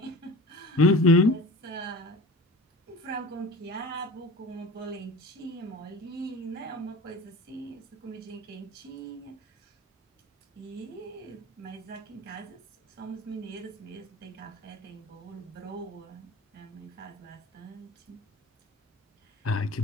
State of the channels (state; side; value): normal; both; correlation 0.37